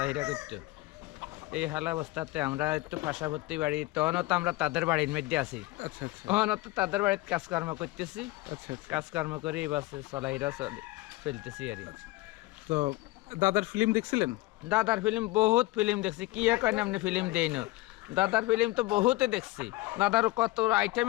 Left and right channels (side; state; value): right; quieter; 19.8 dB